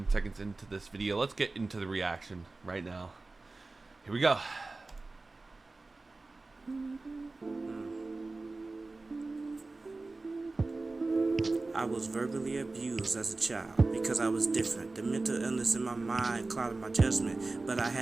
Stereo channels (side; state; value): left; quieter; 3.4 dB